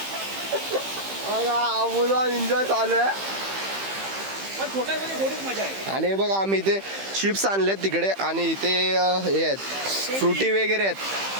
बघा मुलं एन्जॉय चालू आहे. पण छोट्यामध्ये थोडीच मजा आहे. आणि बघा आम्ही इथे चिप्स आणलेत तिकडे, आणि इथे हे आहेत फ्रुटी वगैरे आहेत,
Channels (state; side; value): late; left; 15 ms